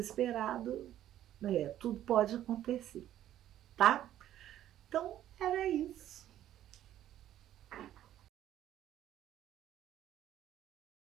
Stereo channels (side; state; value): left; quieter; 12.1 dB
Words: tudo pode acontecer, tá? Então, era isso.